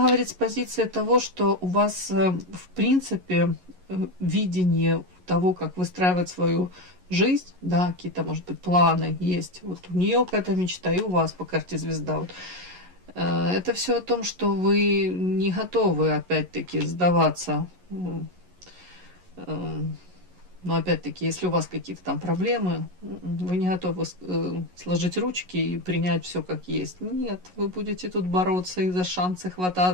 говорит с позиции того, что у вас, в принципе, видение того, как выстраивать свою жизнь, да, какие-то, может быть, планы есть. Вот у нее какая-то мечта, и у вас по карте звезда. Вот. Это все о том, что вы не готовы, опять-таки, сдаваться. Но опять-таки, если у вас какие-то там проблемы, вы не готовы сложить ручки и принять все как есть. Нет, вы будете тут бороться и за шансы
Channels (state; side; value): late; left; 11 ms